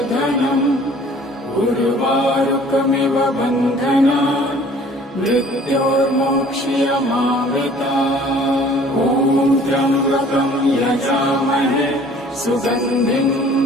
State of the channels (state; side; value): normal; both; correlation 0.52